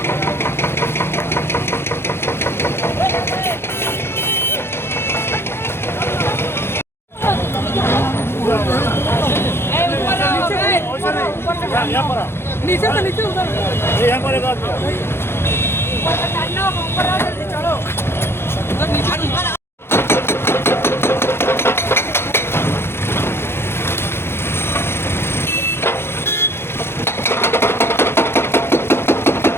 नीचे से नीचे उधर यहाँ पर एक आदमी चलो नीचे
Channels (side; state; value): right; late; 0.12 ms